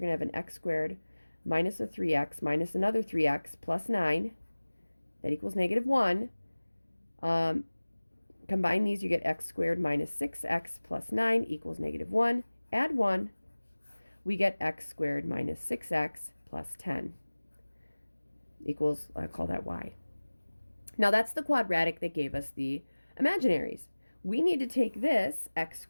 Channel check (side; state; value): both; inverted; correlation -1.00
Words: going to have an x squared minus a 3x minus another 3x plus 9. That equals negative 1. Combine these, you get x squared minus 6x plus 9 equals negative 1. Add 1. We get x squared minus 6x plus 10 equals, I call that y. Now that's the quadratic that gave us the imaginaries. We need to take this x